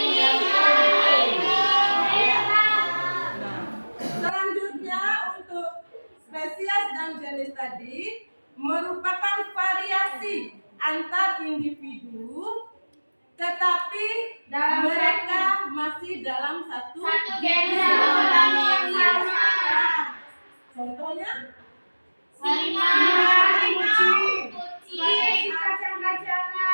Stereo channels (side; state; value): both; inverted; correlation -1.00